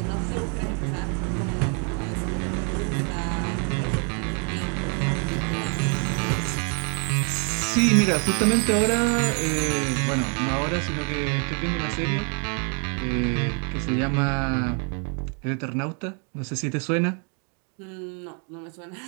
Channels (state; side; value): quieter; left; 39.2 dB